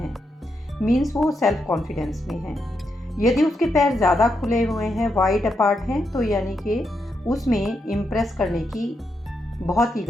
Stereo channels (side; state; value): both; normal; correlation 0.82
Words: मीन्स वो सेल्फ कॉन्फिडेंस में है। यदि उसके पैर ज़्यादा खुले हुए हैं, वाइड अपार्ट हैं, तो यानी कि उसमें इम्प्रेस करने की बहुत